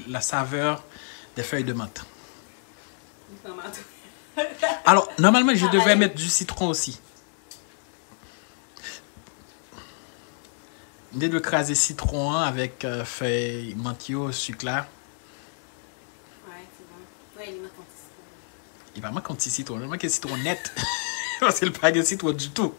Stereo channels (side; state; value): right; silent; 60 dB below the other